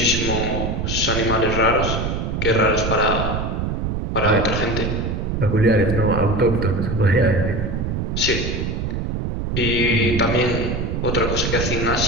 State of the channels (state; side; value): noise; right; rumble, 2 dB below the sound